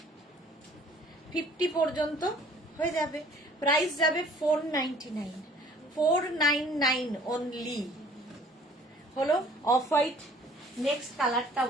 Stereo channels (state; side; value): normal; both; correlation 0.54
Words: 50 পর্যন্ত হয়ে যাবে, প্রাইস যাবে 499, 499 অনলি। হলো অফ হোয়াইট। নেক্সট কালারটা,